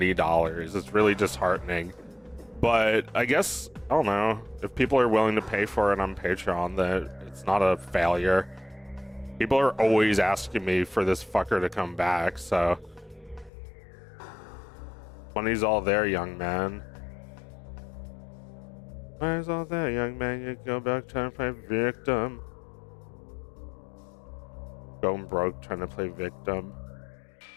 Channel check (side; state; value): right; drops out; at 13.5 s